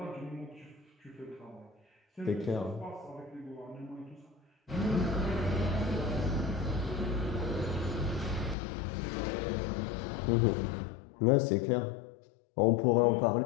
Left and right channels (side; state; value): right; drops out; at 8.6 s